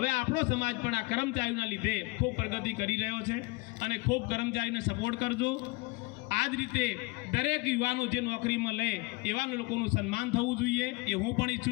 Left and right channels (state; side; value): quieter; right; 24.6 dB